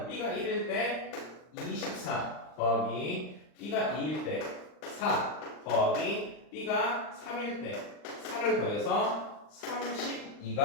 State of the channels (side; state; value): right; late; 39 ms